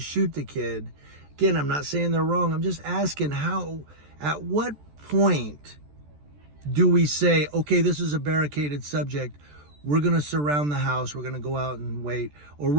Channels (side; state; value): left; late; 14 ms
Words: the kid. Again, I'm not saying they're wrong. I'm just asking at what point do we say, okay, this is a barricaded subject. We're going to surround the house. We're going to go out and wait. Or